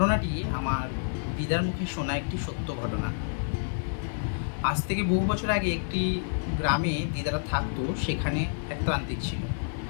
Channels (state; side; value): silent; right; digital silence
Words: আমার দিদার মুখে শোনা একটি সত্য ঘটনা। আজ থেকে বহু বছর আগে একটি গ্রামে দিদারা থাকতো। সেখানে এক তান্ত্রিক ছিল।